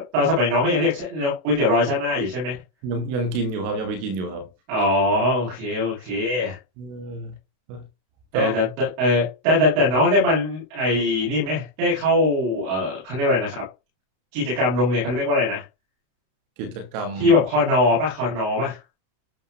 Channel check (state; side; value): late; left; 32 ms